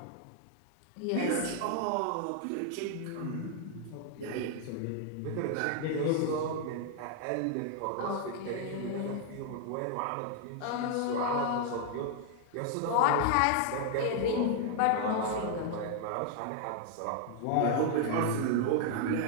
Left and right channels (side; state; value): both; different; correlation 0.00